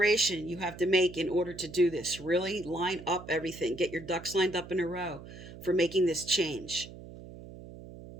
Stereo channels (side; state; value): right; noise; hum, 15 dB below the sound